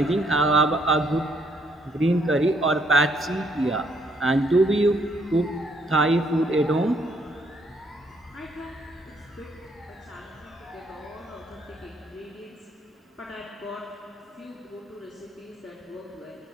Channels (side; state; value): both; normal; correlation 0.70